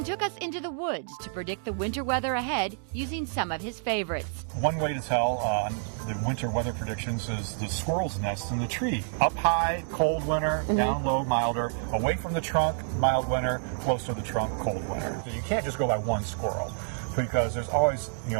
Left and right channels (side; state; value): left; silent; digital silence